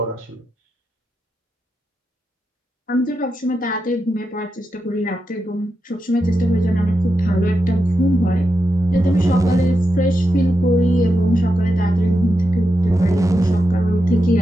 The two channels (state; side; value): normal; both; correlation 0.87